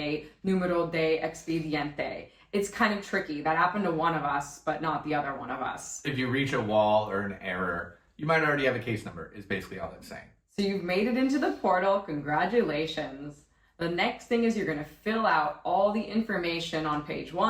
numero de expediente. It's kind of tricky. That happened to one of us, but not the other one of us. If you reach a wall or an error, you might already have a case number, is basically all it's saying. So you've made it into the portal. Congratulations. The next thing is you're going to fill out all the information on page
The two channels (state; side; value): identical; both; correlation 1.00